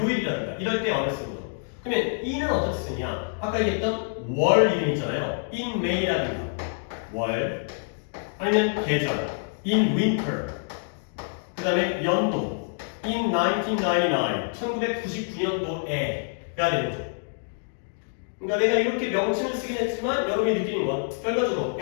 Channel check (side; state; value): right; silent; digital silence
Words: 이럴 때 on을 쓰는 거죠. 그러면 in은 어떻게 쓰냐? 아까 얘기했던 월 이름 있잖아요. in May라든가 월 아니면 계절 in winter 그 다음에 연도 in 1999 1999년도에가 되는 거죠. 그러니까 내가 이렇게 명칭을 쓰긴 했지만 여러분이 느끼는 건 결과적으로